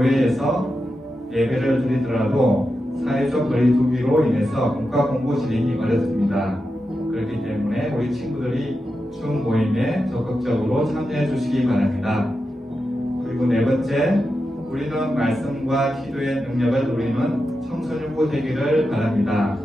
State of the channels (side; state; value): both; normal; correlation 0.89